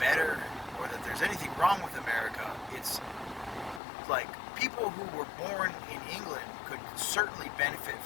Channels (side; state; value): right; drops out; at 3.8 s